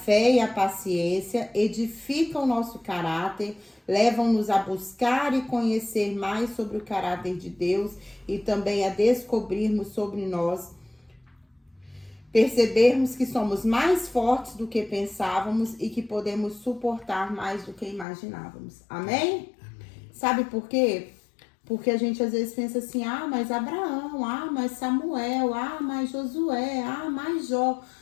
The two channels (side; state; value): right; drops out; at 18.1 s